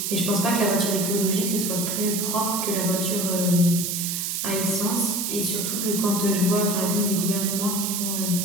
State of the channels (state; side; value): noise; right; hiss, 1 dB below the sound